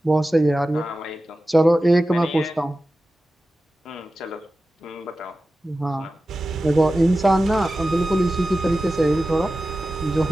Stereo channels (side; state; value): both; normal; correlation 0.94